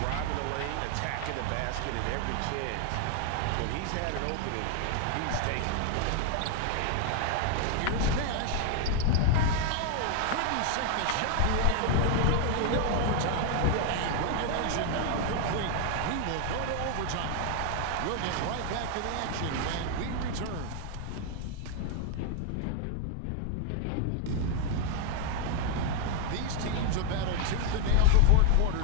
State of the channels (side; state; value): both; different; correlation 0.00